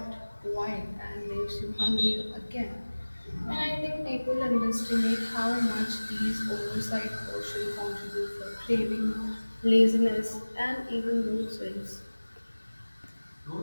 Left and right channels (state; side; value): inverted; both; correlation -1.00